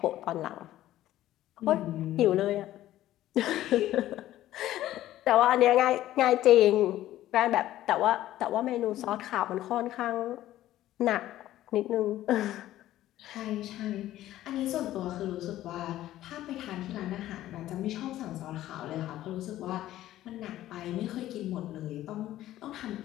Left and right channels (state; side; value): quieter; right; 14.0 dB